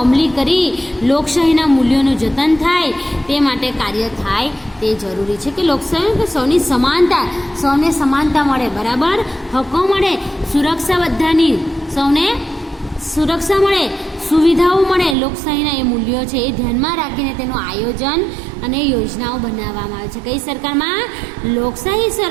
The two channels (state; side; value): drops out; left; at 15.2 s